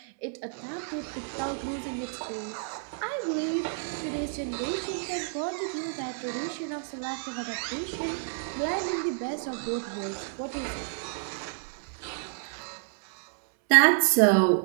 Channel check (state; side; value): silent; left; 58 dB below the other